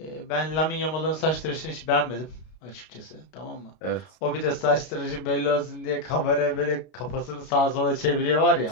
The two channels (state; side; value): late; right; 32 ms